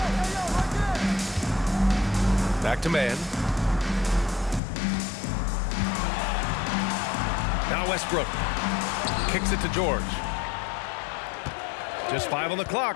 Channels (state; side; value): drops out; right; at 4.6 s